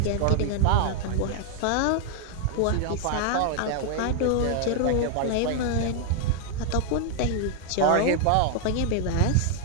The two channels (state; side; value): different; both; correlation 0.00